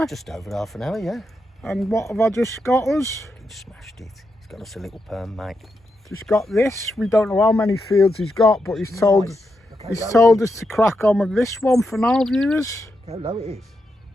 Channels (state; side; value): normal; both; correlation 0.85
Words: Just over half an hour, yeah. And what have I just got us? He smashed it. He's got us a little perm, mate. Just got this. We don't know how many fields he's got, but he's told us to crack on with this one for now, viewers. How low it is.